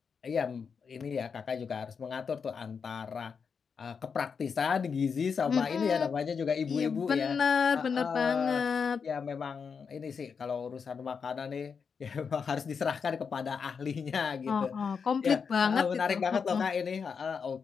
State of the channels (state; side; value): quieter; right; 6.0 dB